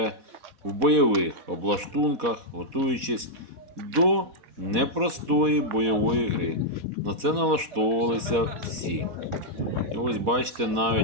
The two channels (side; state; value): left; late; 4.1 ms